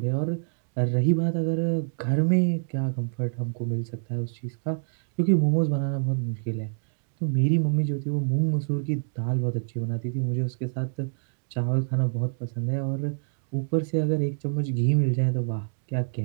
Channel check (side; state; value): left; silent; digital silence